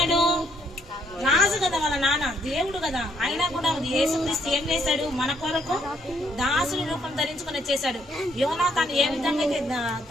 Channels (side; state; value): both; normal; correlation 0.70